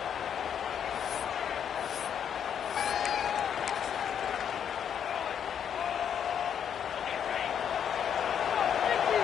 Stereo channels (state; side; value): quieter; right; 8.4 dB